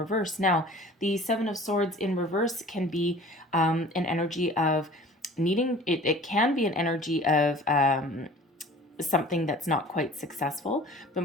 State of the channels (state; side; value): normal; both; correlation 0.45